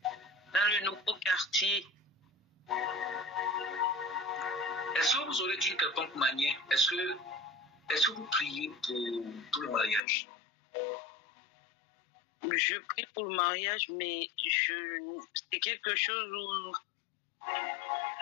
dans le nouveau quartier. Est-ce que vous aurez dit quelconque manière, est-ce que vous priez pour le mariage? Je prie pour le mariage, mais c'est quelque chose où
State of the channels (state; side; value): drops out; right; at 10.0 s